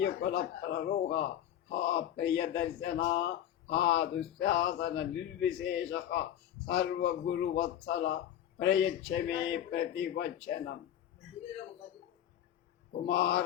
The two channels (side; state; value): right; quieter; 11.0 dB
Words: ప్రరోహ ప్రియదర్శన దుశ్శాసన నిర్విశేష సర్వగురువత్సల ప్రయచ్చమే ప్రతివచనం.